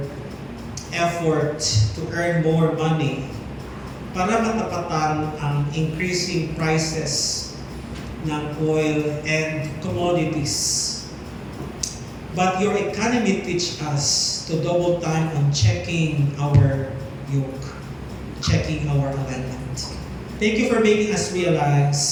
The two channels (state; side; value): identical; both; correlation 1.00